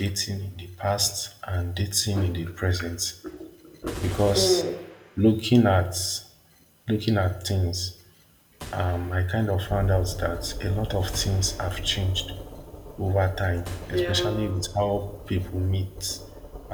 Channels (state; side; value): identical; both; correlation 1.00